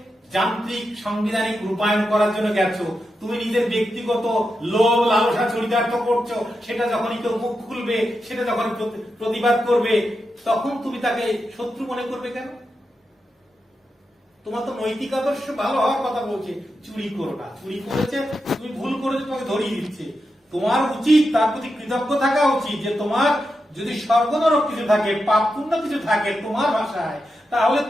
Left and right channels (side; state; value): both; normal; correlation 0.88